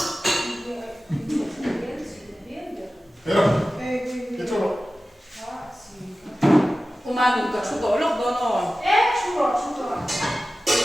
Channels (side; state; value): both; normal; correlation 0.95